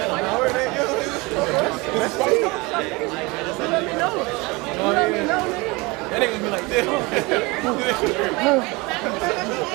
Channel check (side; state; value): left; quieter; 24.9 dB